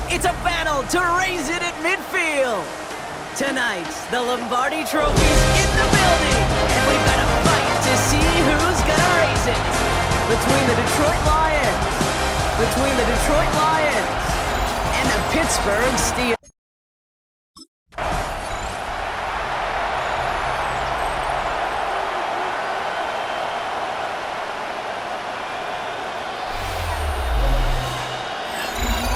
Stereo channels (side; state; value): both; identical; correlation 1.00